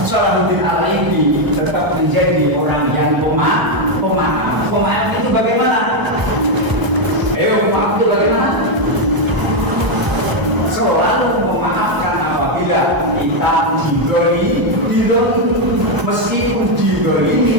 Salahuddin Al-Ayyubi tetap menjadi orang yang pemaaf. Pemaaf itu bagaimana? Ayo, pemaaf itu bagaimana? Selalu memaafkan apabila kita diberi, meskipun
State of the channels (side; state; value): left; late; 1.0 ms